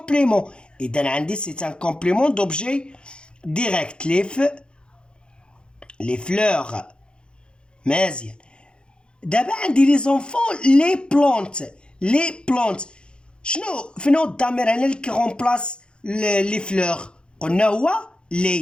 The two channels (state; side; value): late; right; 0.052 ms